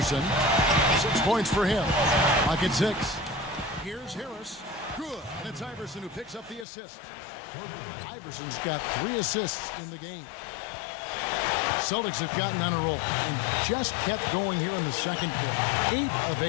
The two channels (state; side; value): drops out; right; at 6.7 s